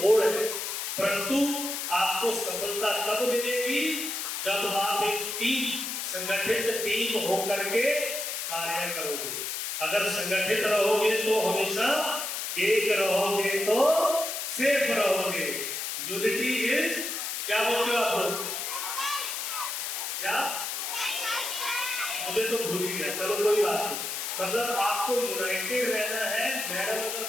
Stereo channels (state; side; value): noise; left; hiss, 3 dB below the sound